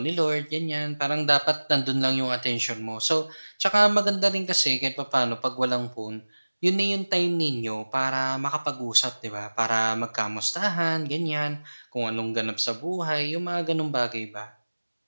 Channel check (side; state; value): both; inverted; correlation -1.00